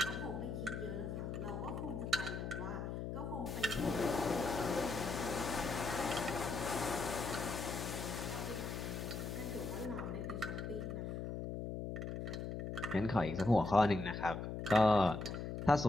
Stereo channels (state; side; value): noise; left; hum, 4 dB below the sound